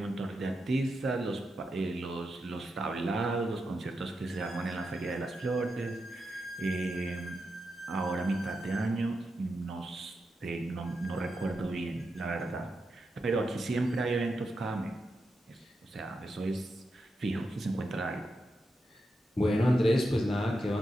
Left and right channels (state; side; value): normal; both; correlation 0.87